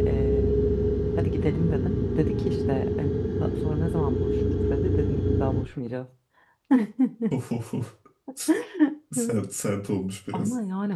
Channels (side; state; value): both; identical; correlation 1.00